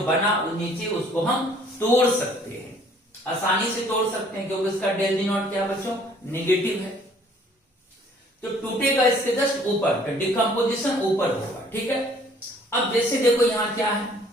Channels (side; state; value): both; normal; correlation 0.58